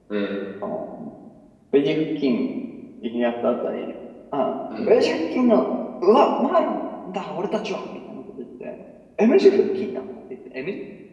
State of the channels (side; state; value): both; identical; correlation 1.00